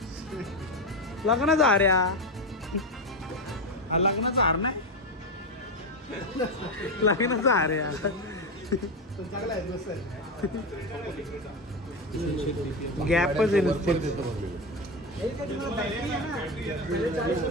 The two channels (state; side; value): normal; both; correlation 0.15